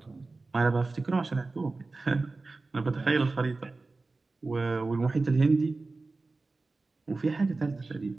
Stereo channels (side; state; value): left; quieter; 3.6 dB